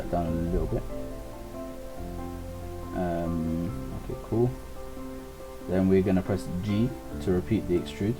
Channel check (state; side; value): identical; both; correlation 1.00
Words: down a little bit. Okay, cool. Then we're gonna press G to repeat the extrude.